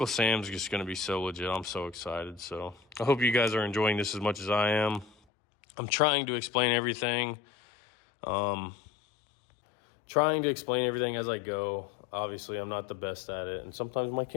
Sam's just going to be so legit. I'm so excited. So I hope you guys are enjoying this as much as I am. I'm trying to explain everything. As I go. Obviously, I'm not the best at it, and sometimes my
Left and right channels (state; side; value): drops out; right; at 5.1 s